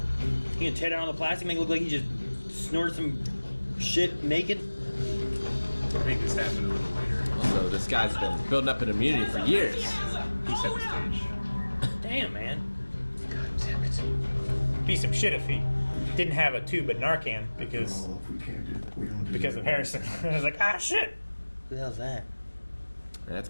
You gonna tear down all the plastic, make it look like he just snorted some shit naked? I think this happened a little later. So this guy's been building up an immunity for years. He set the stage. Damn, man. Be some shit if he didn't have a tube of Narcan because Well, if we can't do it, we don't do of it. Harrison. I was like, ah, shit. Who the hell's that? That's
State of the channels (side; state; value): both; inverted; correlation -1.00